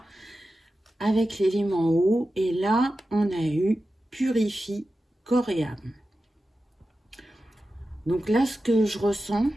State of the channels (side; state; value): both; normal; correlation 0.93